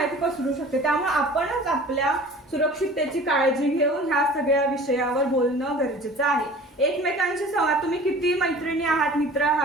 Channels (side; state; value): both; normal; correlation 0.44